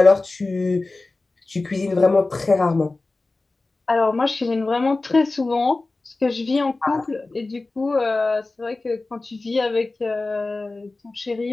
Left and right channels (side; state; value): right; quieter; 3.3 dB